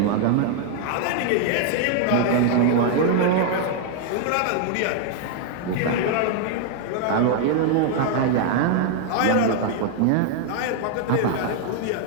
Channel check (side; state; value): both; different; correlation 0.00